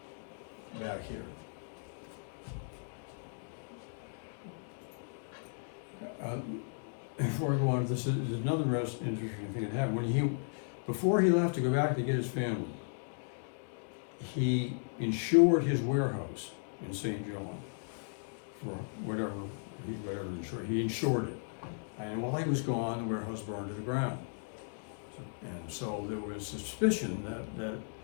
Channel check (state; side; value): silent; right; digital silence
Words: back here. Before I go on, this is another interesting thing that happened. Before he left to go back to get his family, he insured his warehouse in St. John for whatever insured. He insured it. And while he was gone, the warehouse burned to the ground. And so there was suspicion that